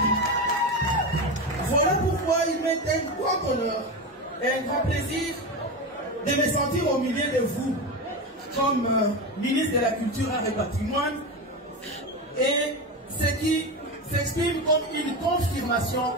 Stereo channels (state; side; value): normal; both; correlation 0.19